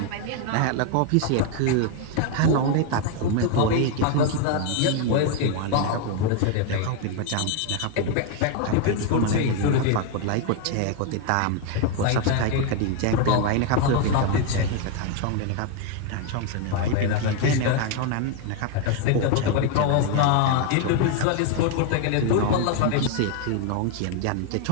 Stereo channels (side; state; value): both; different; correlation 0.01